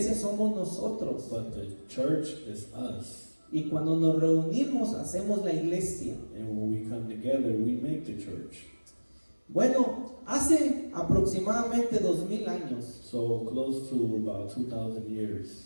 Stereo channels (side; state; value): both; inverted; correlation -1.00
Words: somos nosotros. But the church is us. Y cuando nos reunimos, hacemos la iglesia. And when we come together, we make the church. Bueno, hace aproximadamente 2000 años, So close to about 2,000